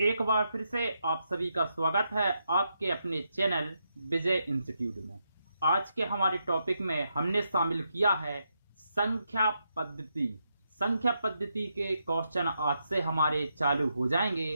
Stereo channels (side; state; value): both; inverted; correlation -0.82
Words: एक बार फिर से आप सभी का स्वागत है आपके अपने चैनल विजय इंस्टीट्यूट में। आज के हमारे टॉपिक में हमने शामिल किया है संख्या पद्धति। संख्या पद्धति के क्वेश्चन आज से हमारे चालू हो जाएंगे।